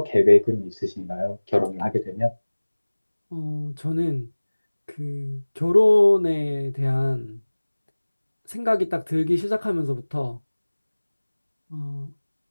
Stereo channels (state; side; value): inverted; both; correlation -1.00